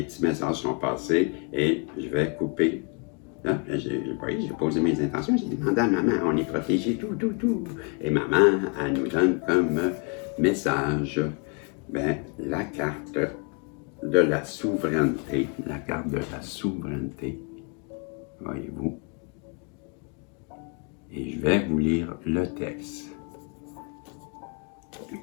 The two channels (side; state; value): right; quieter; 37.6 dB